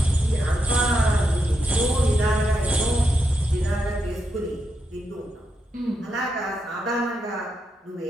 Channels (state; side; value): normal; both; correlation 0.83